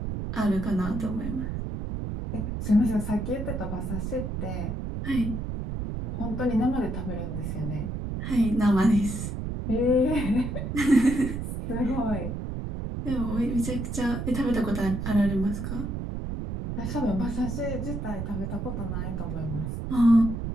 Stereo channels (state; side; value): noise; right; rumble, 4 dB below the sound